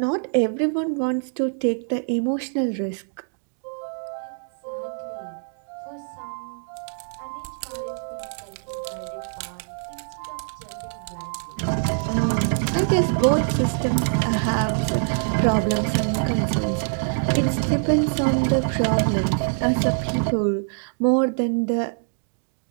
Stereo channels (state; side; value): silent; left; digital silence